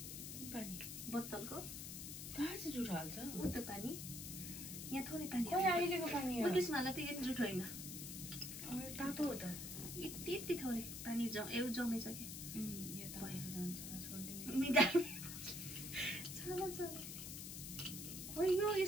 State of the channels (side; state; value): left; noise; hiss, 7 dB below the sound